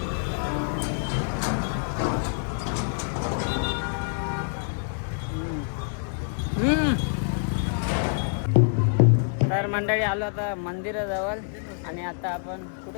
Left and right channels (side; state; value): right; silent; 61 dB below the other